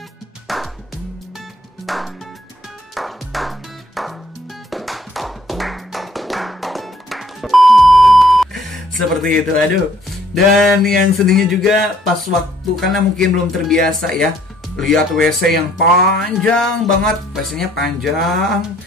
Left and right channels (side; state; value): both; normal; correlation 0.63